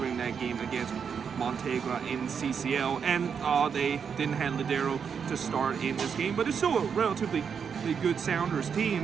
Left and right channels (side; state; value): left; quieter; 6.8 dB